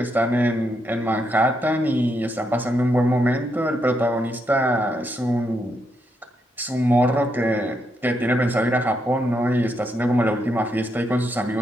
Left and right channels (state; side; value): normal; both; correlation 0.80